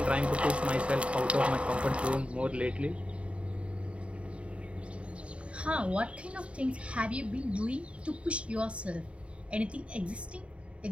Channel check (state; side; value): late; left; 0.061 ms